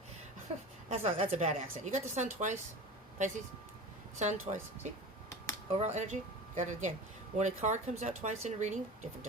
That's a bad accent. You got the sun twice, Pisces? Sun twice. See? Overall energy. Got it again. When a card comes out twice in a reading, different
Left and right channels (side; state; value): both; normal; correlation 0.33